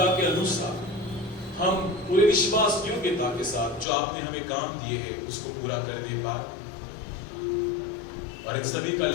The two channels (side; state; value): right; drops out; at 3.9 s